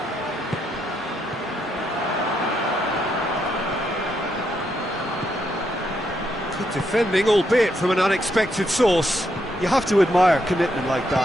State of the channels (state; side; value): normal; both; correlation 0.78